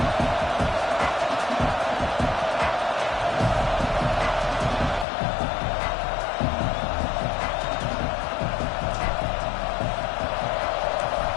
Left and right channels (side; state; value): right; drops out; at 5.1 s